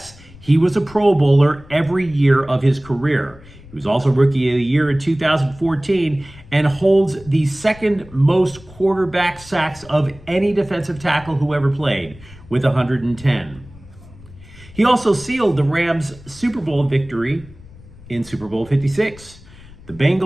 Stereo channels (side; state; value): left; noise; rumble, 21 dB below the sound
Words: he was a Pro Bowler every year of his career. He was also Rookie of the Year in 2014 and holds the second most quarterback sacks of any defensive tackle who ever played, with 110. He also sealed the Rams' Super Bowl victory in Super Bowl 56. The